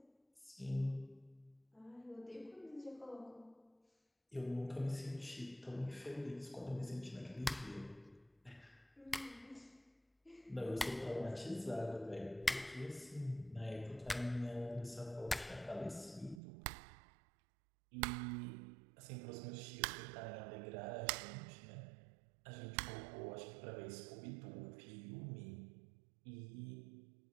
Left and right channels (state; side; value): drops out; left; at 16.4 s